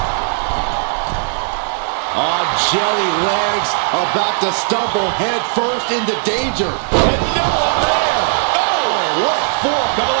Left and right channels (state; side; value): silent; left; digital silence